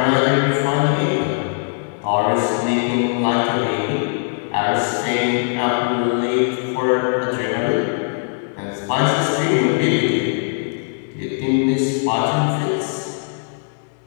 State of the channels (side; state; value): right; silent; digital silence